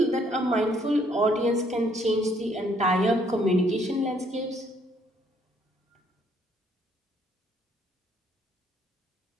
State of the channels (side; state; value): both; normal; correlation 0.66